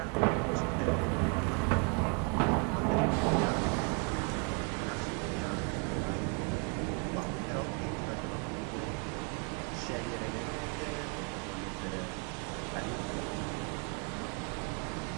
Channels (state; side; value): quieter; left; 36.4 dB